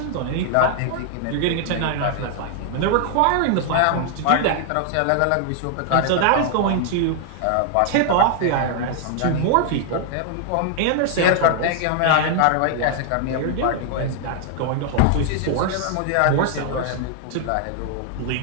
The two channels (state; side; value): different; both; correlation 0.00